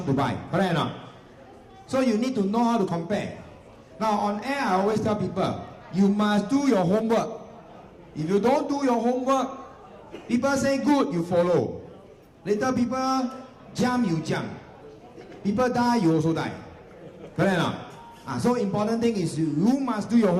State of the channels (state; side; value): identical; both; correlation 1.00